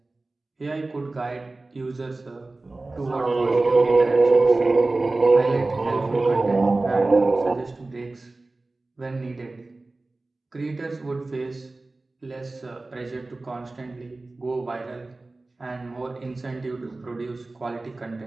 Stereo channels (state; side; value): quieter; left; 3.2 dB